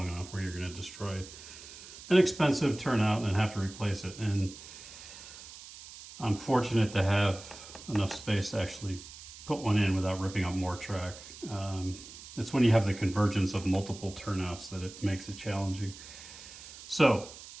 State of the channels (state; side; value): noise; right; hiss, 15 dB below the sound